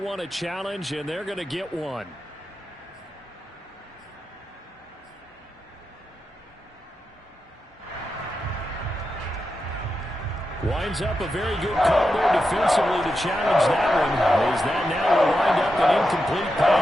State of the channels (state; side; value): normal; both; correlation 0.88